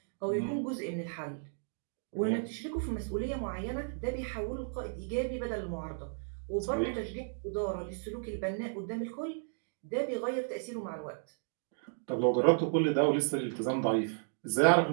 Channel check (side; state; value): left; silent; digital silence